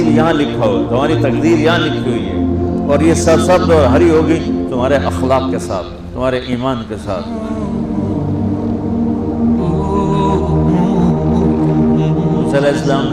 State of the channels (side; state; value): both; identical; correlation 1.00